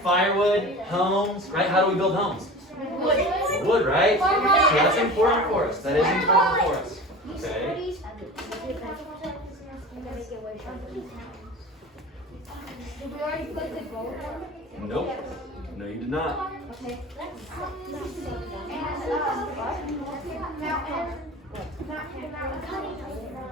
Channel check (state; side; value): normal; both; correlation 0.35